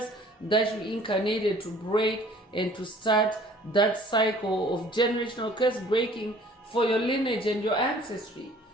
that you incarnated to break and to start that cycle of generational curse breaking for your lineage and your ancestry.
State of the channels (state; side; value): normal; both; correlation 0.53